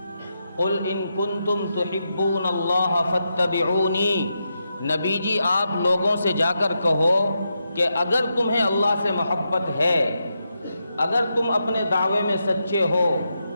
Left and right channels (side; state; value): both; inverted; correlation -0.85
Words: قل ان کنتم تحبون اللہ فاتبعونی، نبی جی آپ لوگوں سے جا کر کہو کہ اگر تمہیں اللہ سے محبت ہے، اگر تم اپنے دعوے میں سچے ہو